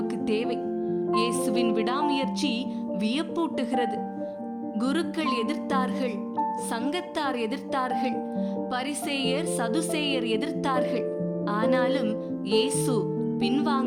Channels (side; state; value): both; identical; correlation 1.00